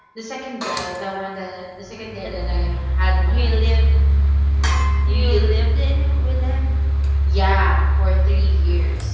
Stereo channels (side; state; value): both; identical; correlation 1.00